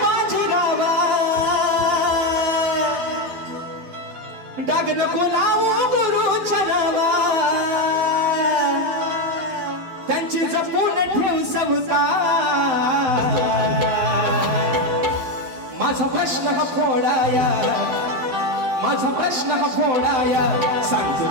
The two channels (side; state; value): left; late; 11 ms